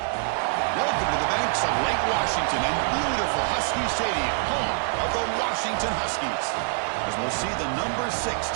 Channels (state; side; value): silent; left; 57 dB below the other